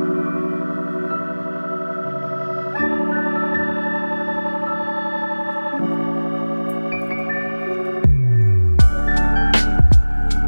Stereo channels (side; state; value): both; inverted; correlation -1.00